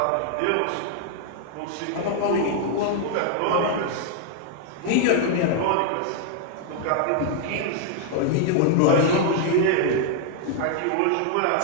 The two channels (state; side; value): different; both; correlation 0.00